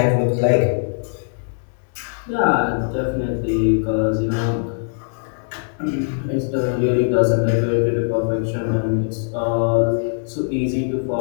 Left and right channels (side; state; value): right; silent; digital silence